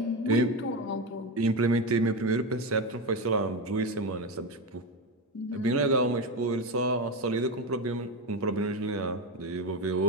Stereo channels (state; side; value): normal; both; correlation 0.15